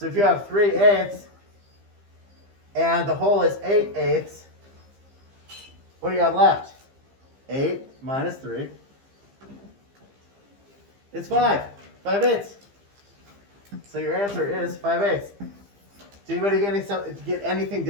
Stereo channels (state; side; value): late; left; 15 ms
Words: if you have 3/8 and the whole is 8/8, what do you have left? 8 minus 3. It's 5. 5/8. So your answer is 5/8. Did anybody get anything